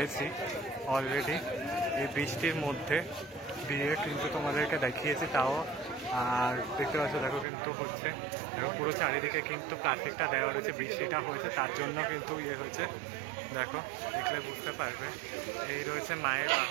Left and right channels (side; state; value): left; drops out; at 7.5 s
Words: অলরেডি। এই বৃষ্টির মধ্যে দিয়ে কিন্তু তোমাদেরকে দেখিয়েছি তাও। আর দেখতে পাচ্ছ দেখো কিন্তু হচ্ছে, দেখো পুরো চারিদিকে কিন্তু প্লাস্টিকটা দেওয়া রয়েছে, বৃষ্টিটা হয়েছে তার জন্য কিন্তু ইয়ে হচ্ছে। দেখো দেখলে বুঝতে পারবে। এই রয়েছে মায়ের